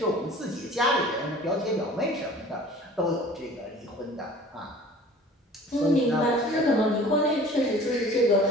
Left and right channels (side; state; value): both; normal; correlation 0.46